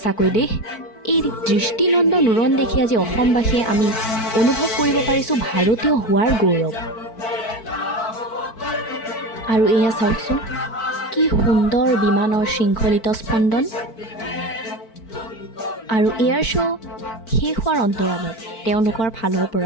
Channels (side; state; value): right; late; 4.5 ms